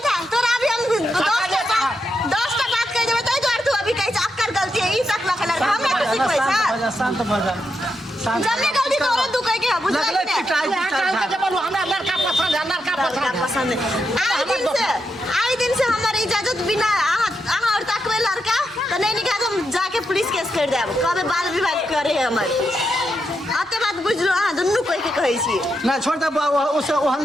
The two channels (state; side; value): normal; both; correlation 0.84